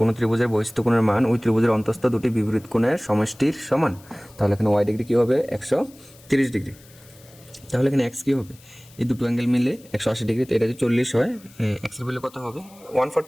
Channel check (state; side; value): noise; left; hiss, 25 dB below the sound